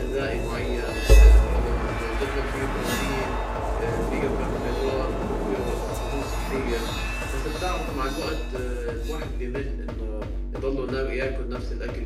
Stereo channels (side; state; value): both; identical; correlation 1.00